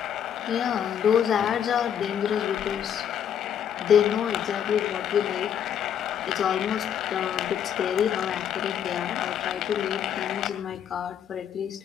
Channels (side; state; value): right; quieter; 9.0 dB